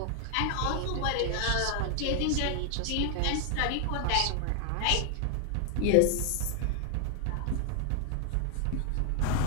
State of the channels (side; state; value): both; different; correlation 0.00